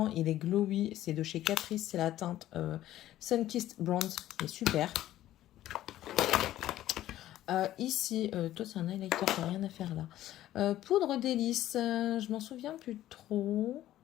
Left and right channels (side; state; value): right; quieter; 13.7 dB